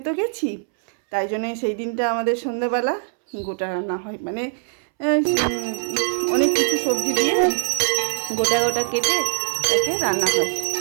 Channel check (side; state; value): left; silent; 63 dB below the other